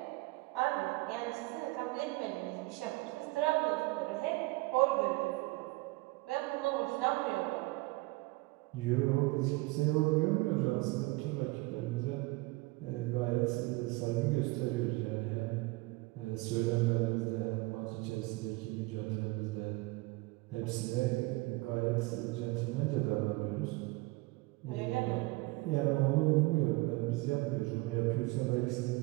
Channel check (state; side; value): quieter; left; 23.0 dB